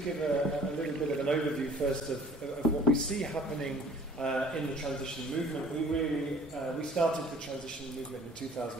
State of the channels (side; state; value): both; normal; correlation 0.51